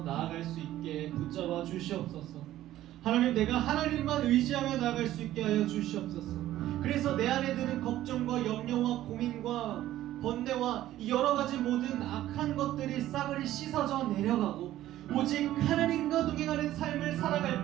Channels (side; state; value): left; quieter; 13.9 dB